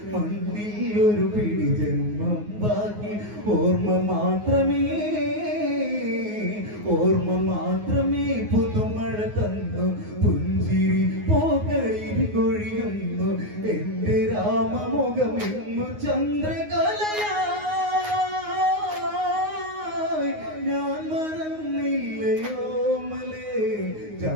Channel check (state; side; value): late; left; 9.5 ms